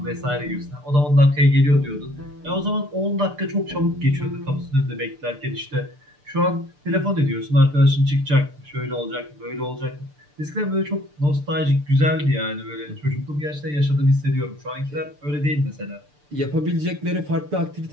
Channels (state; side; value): late; left; 6.8 ms